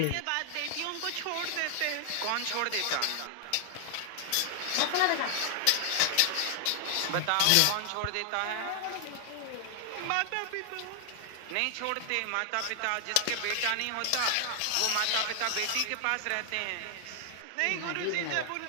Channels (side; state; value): both; different; correlation 0.00